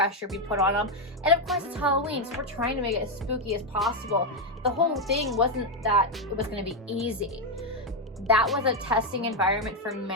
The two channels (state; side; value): normal; both; correlation 0.04